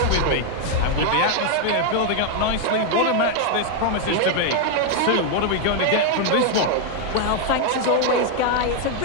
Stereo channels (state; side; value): different; both; correlation 0.00